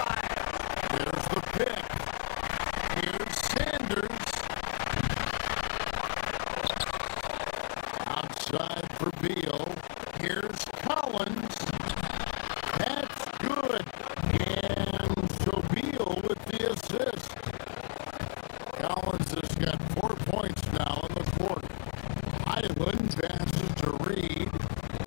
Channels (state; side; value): silent; right; digital silence